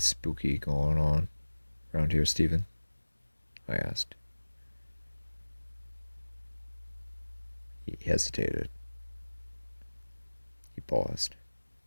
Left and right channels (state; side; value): inverted; both; correlation -1.00